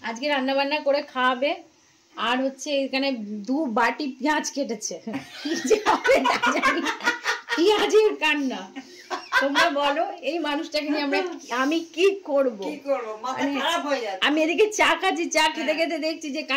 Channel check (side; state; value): both; identical; correlation 1.00